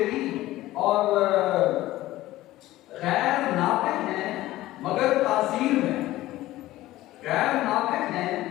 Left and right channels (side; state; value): right; quieter; 16.3 dB